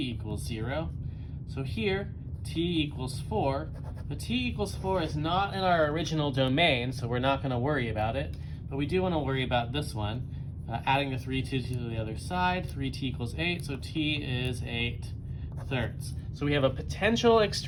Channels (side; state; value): both; identical; correlation 1.00